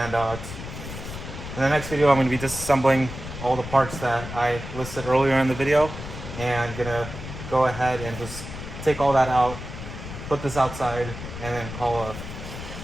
in the next video, I'm gonna be disassembling all the parts that I listed earlier in the video, and gonna go ahead and just take all that out, put this outside, and then call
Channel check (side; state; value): left; noise; rumble, 10 dB below the sound